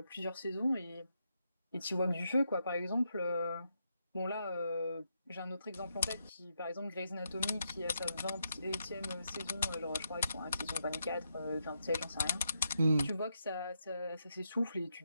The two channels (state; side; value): inverted; both; correlation -0.82